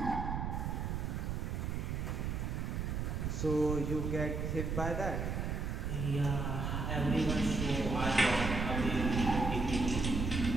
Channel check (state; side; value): noise; right; rumble, 1 dB below the sound